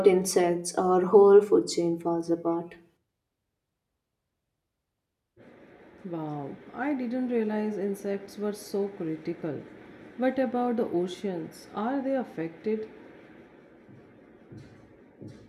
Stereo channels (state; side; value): identical; both; correlation 1.00